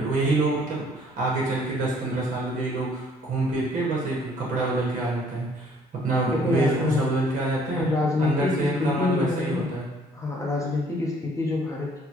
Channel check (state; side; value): normal; both; correlation 0.60